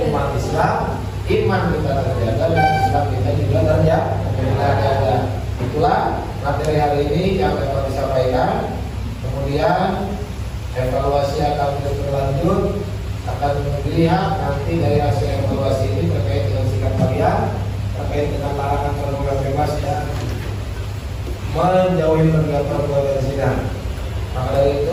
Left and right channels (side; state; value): both; identical; correlation 1.00